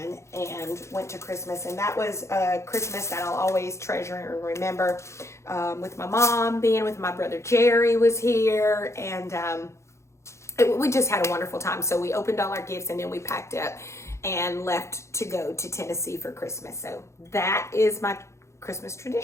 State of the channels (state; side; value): late; right; 0.14 ms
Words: and went to Christmas. And that was a Christmas that I'll always treasure and remember, with my mom, being with my brother Jerry was here, and we just had a wonderful time. So we opened all our gifts, and then we packed up and left to go to Tennessee for Christmas. So that is my Christmas